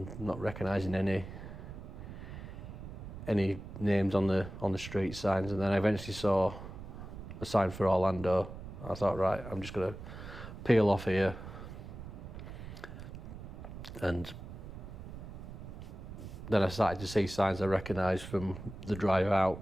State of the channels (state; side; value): noise; right; rumble, 11 dB below the sound